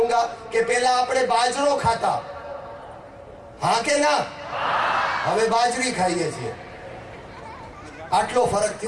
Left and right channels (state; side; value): identical; both; correlation 1.00